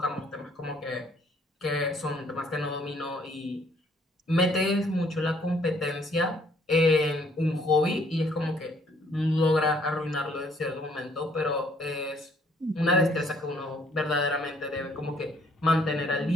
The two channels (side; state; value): both; normal; correlation 0.63